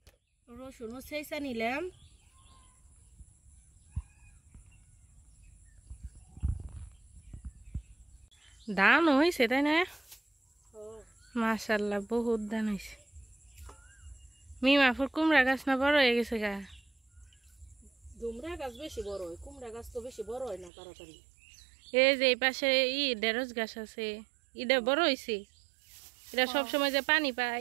রসুনও সেইসা নিলাম। ধান হয়েছে তাই না? মাশাআল্লাহ বহুত ধান হয়েছে। মিমাফুর কুমড়া গাছ না বড় হয়ে গেছে গা? কুমড়া গাছ বেশি বড় হয়, কুমড়া গাছ তো বেশি বড় হয় না তাড়াতাড়ি। এই যে এই পাশে ঢেঁড়স গাছ আছে, এটা বড় হয়েছে। এটা সবসময় যে পানি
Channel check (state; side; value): drops out; left; at 20.7 s